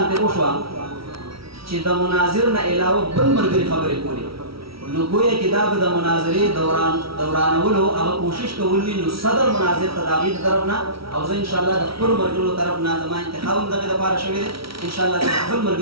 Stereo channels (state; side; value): late; left; 0.75 ms